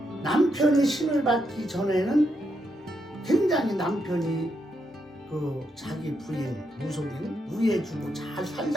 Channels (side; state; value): both; normal; correlation 0.81